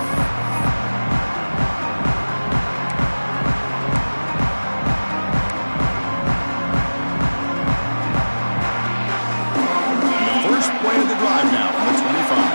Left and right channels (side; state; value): both; inverted; correlation -1.00